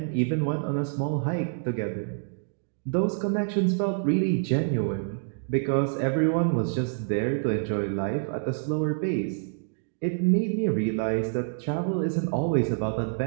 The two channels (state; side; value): silent; left; digital silence